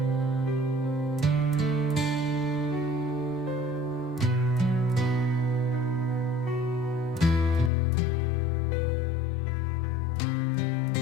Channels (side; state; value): right; drops out; at 7.7 s